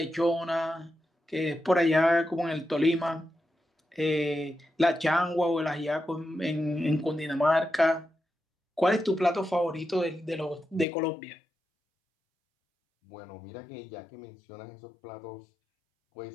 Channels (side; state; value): right; drops out; at 10.9 s